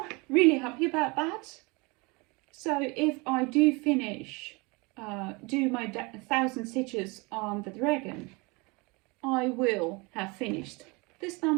Really happy about that. So if I do finish, do my 1,000 stitches on the dragon, I will have finished this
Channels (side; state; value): left; quieter; 27.4 dB